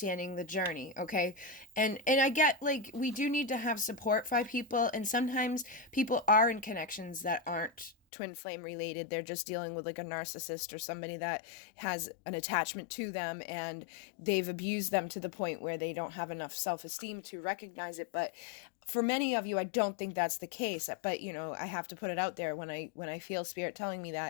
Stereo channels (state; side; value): drops out; right; at 8.0 s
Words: the journey. Okay, and I get like we do need to have support by people, and sometimes people are in connections that aren't twin flame related. They're just dealing with like a narcissist or somebody that has an attachment to them, and they've abused them to the point where they don't have enough self-esteem to recognize it. But for many of you, I don't think that's the case. But you know, I have to put it out there when I feel Spirit telling me